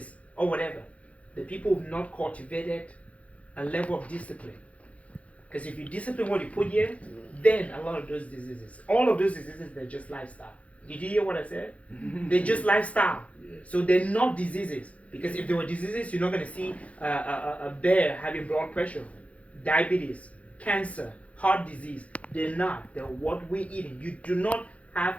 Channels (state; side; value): late; right; 0.065 ms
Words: or whatever, the people who've not cultivated a level of discipline Because if you discipline what you put here, then a lot of those diseases, all of those diseases, they're just lifestyle. Did you hear what I said? They're just lifestyle. So they're not diseases. Because if they were diseases, you're not going to see a bear having blood pressure, diabetes, cancer, heart disease. They're not. They're what we're eating. You do not